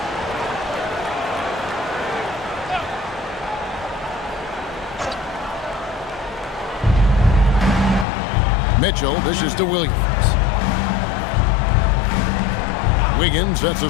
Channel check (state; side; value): drops out; right; at 8.1 s